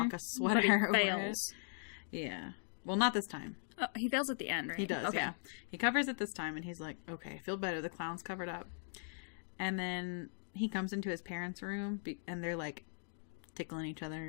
sweater over it. Yeah. Well, not this time. Oh, he fails at the end, right? He does, okay. Yeah. He covers it this time and he's like, okay, I feel better. The clown's covered up. And then he comes into his parents' room and they're like tickling each other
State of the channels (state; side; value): silent; right; digital silence